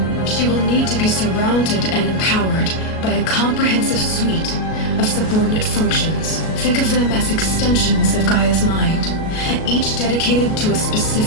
She will need to be surrounded and empowered by a comprehensive suite of subordinate functions. Think of them as extensions of Gaia's mind, each dedicated to a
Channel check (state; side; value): late; right; 37 ms